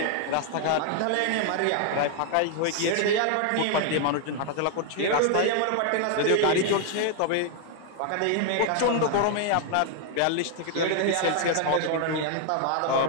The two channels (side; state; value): both; different; correlation 0.00